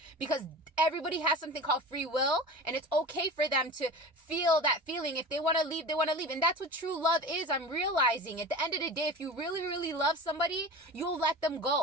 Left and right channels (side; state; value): both; normal; correlation 0.33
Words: Because everybody has something called free will. And it's okay for them to feel that feeling. If they want to leave, they want to leave. And that's what true love is. I'm realizing at the end of the day, if you really, really love somebody, you'll let them